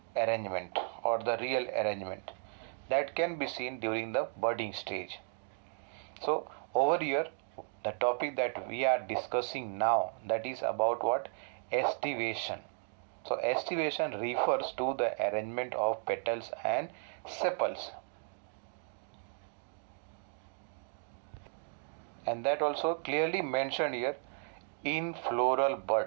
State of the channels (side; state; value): left; silent; 55 dB below the other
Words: arrangement or the real arrangement. That can be seen during the budding stage. So over here, the topic that we are discussing now, that is about what? Estivation. So estivation refers to the arrangement of petals and sepals. And that also clearly mentioned here in floral